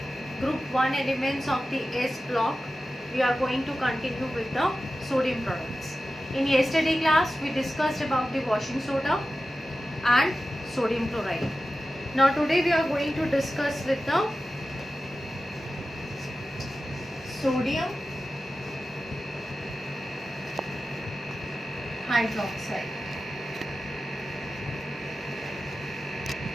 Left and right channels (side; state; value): both; normal; correlation 0.94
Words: group 1 elements of the S block, we are going to continue with the sodium products. In yesterday class, we discussed about the washing soda and sodium chloride. Now today we are going to discuss with the sodium hydroxide.